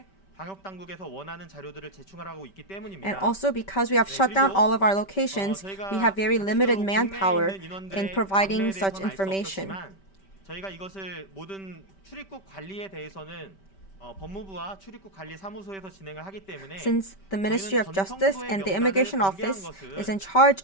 방역 당국에서 원하는 자료들을 제출하고 있기 때문입니다. And also because we have shut down all of our locations, we have very limited manpower in providing such information. 저희가 이것을 모든 출입국 관리에 대해서는 법무부와 출입국 관리 사무소에서 진행을 하기 때문에 Since the Ministry of Justice and the Immigration Office is in charge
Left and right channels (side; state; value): right; late; 5.2 ms